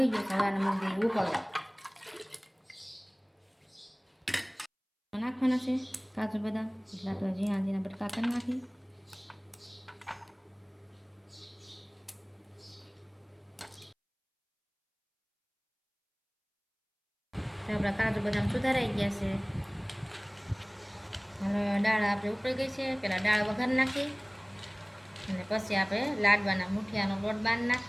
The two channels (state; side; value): identical; both; correlation 1.00